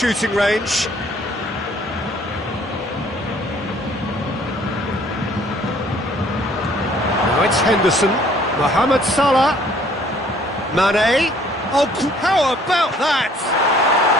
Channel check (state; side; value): normal; both; correlation 0.58